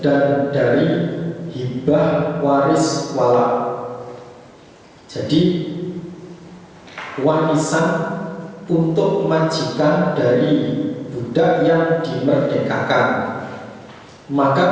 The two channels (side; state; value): both; identical; correlation 1.00